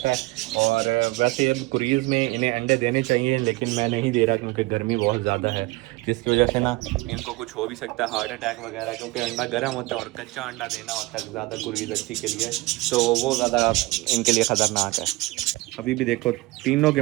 है। और वैसे अब क्रीज में इन्हें अंडे देने चाहिए, लेकिन मैं नहीं दे रहा क्योंकि गर्मी बहुत ज़्यादा है, जिसकी वजह से ना इनको कुछ हो भी सकता है, हार्ट अटैक वगैरह, क्योंकि अंडा गर्म होता है और कच्चा अंडा देना होता है ज़्यादा क्रीज अच्छी के लिए, तो वो ज़्यादा इनके लिए ख़तरनाक है। अभी भी देखो तीनों के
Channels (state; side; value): quieter; left; 20.8 dB